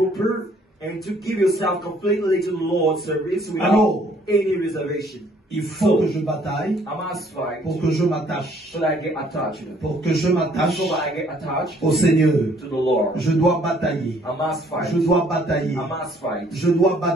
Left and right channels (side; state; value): both; normal; correlation 0.62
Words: and to give yourself completely to the Lord's service without Alors, any reservation. il faut que je bataille I must fight pour que je m'attache, so that I get attached. pour que je m'attache So that I get attached au Seigneur. to the Lord. Je dois batailler, I must fight. je dois batailler, I must fight. je dois